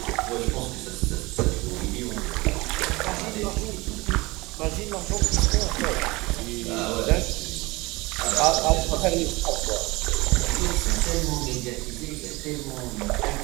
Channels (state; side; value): quieter; left; 22.7 dB